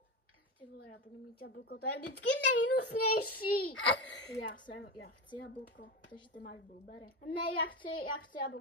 Ty vole, já budu mít jablko, to je vždycky nejhnusnější. Já chci jablko, takže ty máš blueberry. Ne, já chci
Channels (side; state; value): both; normal; correlation 0.20